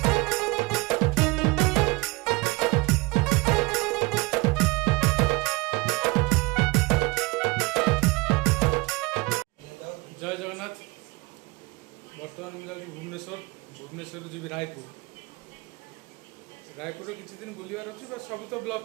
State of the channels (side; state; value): left; quieter; 25.2 dB